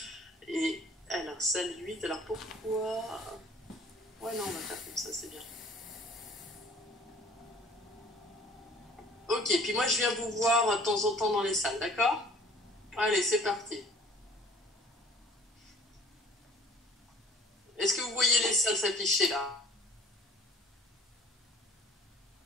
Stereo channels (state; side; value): normal; both; correlation 0.51